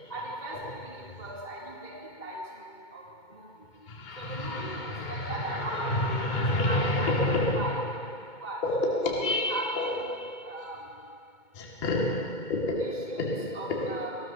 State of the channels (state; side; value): late; right; 2.2 ms